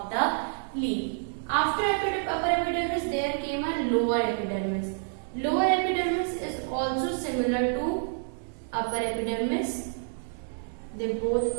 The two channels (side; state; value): left; silent; digital silence